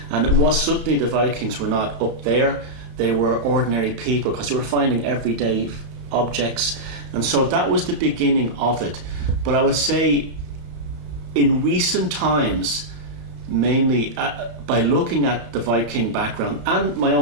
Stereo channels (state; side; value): late; left; 35 ms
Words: And it was suddenly the Vikings were not up there; they were ordinary people, because they were finding everyday objects, and so that was the beginning of it. But I would say, in recent times, mainly by looking at the Viking background and my